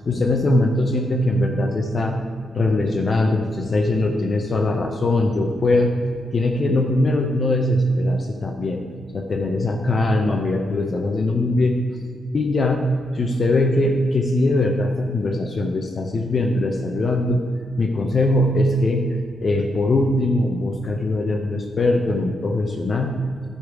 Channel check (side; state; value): both; normal; correlation 0.80